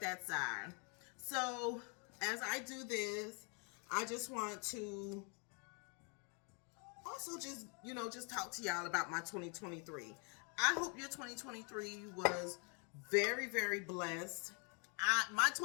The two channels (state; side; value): quieter; right; 36.0 dB